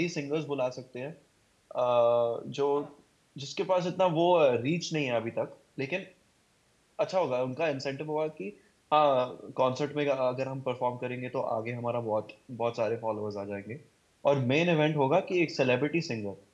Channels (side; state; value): both; identical; correlation 1.00